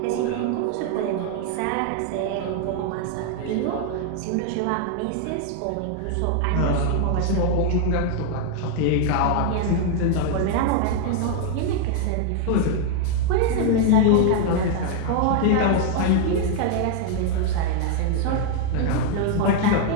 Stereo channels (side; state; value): both; different; correlation 0.00